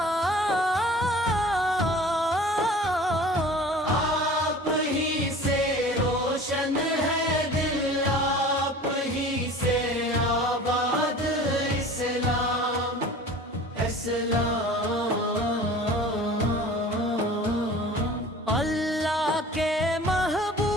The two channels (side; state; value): both; normal; correlation 0.42